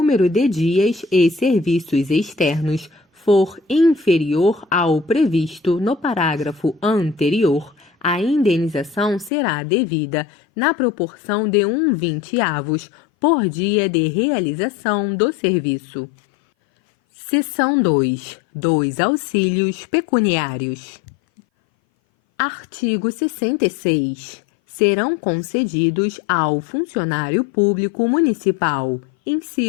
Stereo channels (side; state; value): right; drops out; at 9.3 s